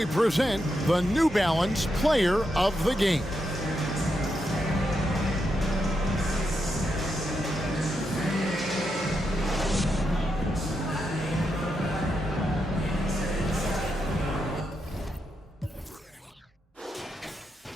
present the New Balance Player of the Game.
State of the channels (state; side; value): normal; both; correlation 0.83